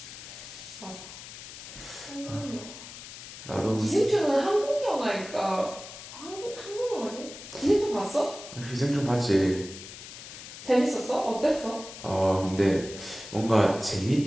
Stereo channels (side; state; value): left; noise; hiss, 13 dB below the sound